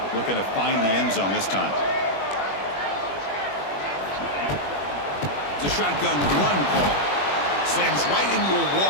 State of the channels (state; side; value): late; right; 21 ms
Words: looking to find the end zone this time. It's a shotgun run call. Slams right into a